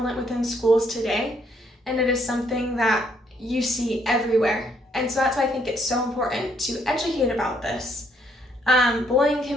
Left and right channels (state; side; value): normal; both; correlation 0.70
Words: within schools today, and it is something that you see everywhere. And so that's why I think it's so important to educate about this. Bullying